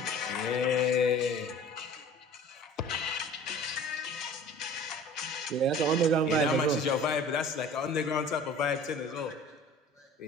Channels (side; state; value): both; normal; correlation 0.45